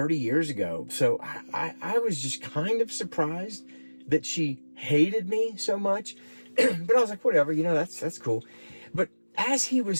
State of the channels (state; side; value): inverted; both; correlation -1.00